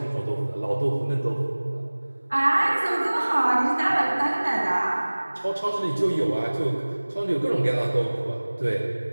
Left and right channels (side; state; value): both; inverted; correlation -1.00